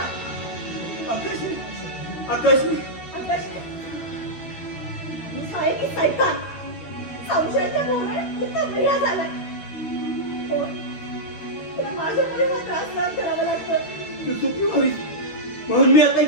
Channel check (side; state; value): right; late; 12 ms